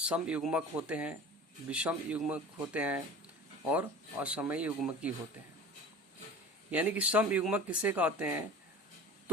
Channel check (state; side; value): normal; both; correlation 0.38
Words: होते हैं, विषम युग्मक होते हैं और असमय युग्मकी होते हैं। यानी कि समयुग्मक किसे कहते हैं?